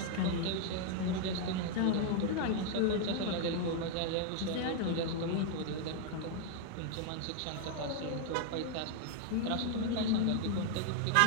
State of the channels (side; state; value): both; different; correlation 0.00